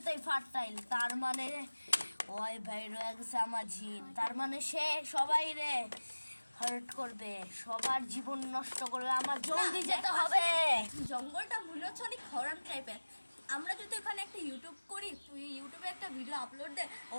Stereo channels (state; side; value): inverted; both; correlation -1.00